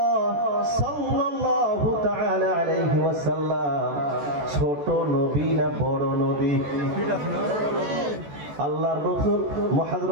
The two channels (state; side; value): late; left; 14 ms